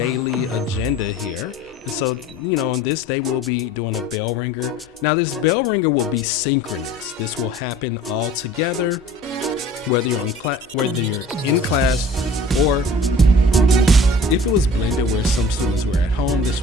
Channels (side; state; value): both; normal; correlation 0.46